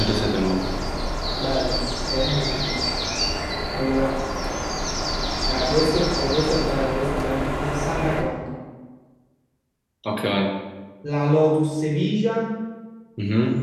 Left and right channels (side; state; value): both; identical; correlation 1.00